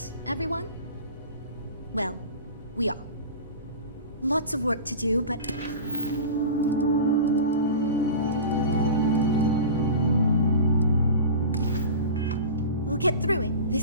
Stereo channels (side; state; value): both; inverted; correlation -0.32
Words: everyone? Well, we are. Lots of work to do, but... we'll get through it.